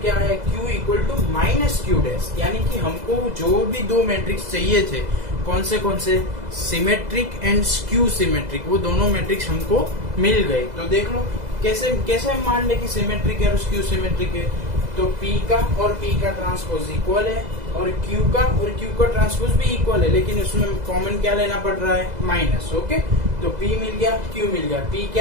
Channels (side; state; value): left; late; 2.0 ms